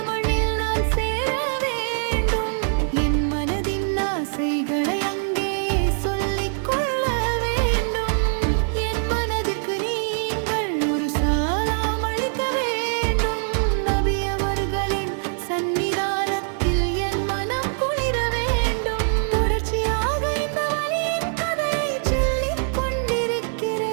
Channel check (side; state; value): left; silent; 63 dB below the other